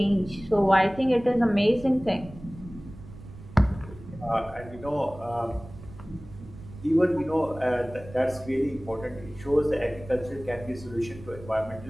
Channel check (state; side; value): noise; right; rumble, 16 dB below the sound